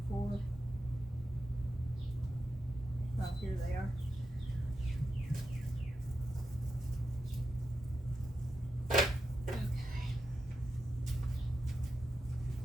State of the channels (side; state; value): both; normal; correlation 0.88